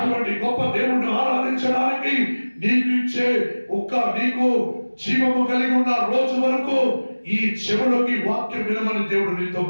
గొప్ప దేవుడిని ఆరాధించడానికి నీకు జీవము కలిగి ఉన్న రోజు వరకు ఈ చెవులోకి వాక్యం వినమని దేవుడు నీతో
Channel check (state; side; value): inverted; both; correlation -1.00